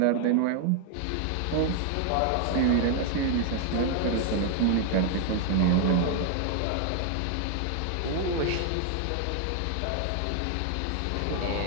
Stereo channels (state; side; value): different; both; correlation 0.00